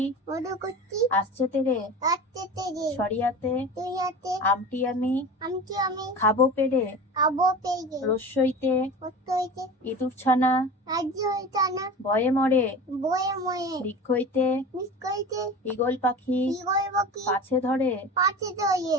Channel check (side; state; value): both; normal; correlation 0.33